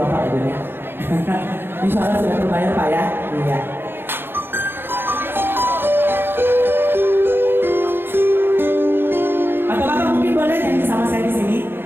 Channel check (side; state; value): left; late; 0.10 ms